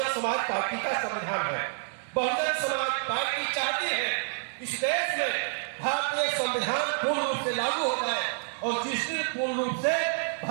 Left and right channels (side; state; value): left; silent; digital silence